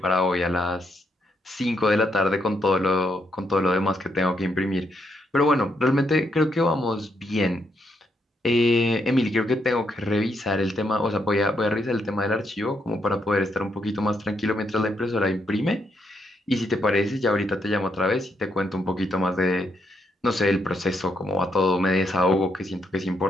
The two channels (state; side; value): normal; both; correlation 0.77